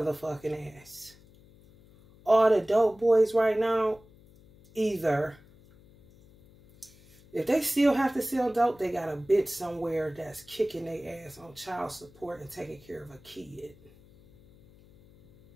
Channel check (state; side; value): noise; left; hum, 26 dB below the sound